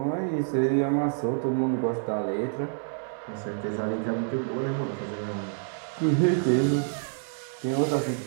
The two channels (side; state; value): left; silent; digital silence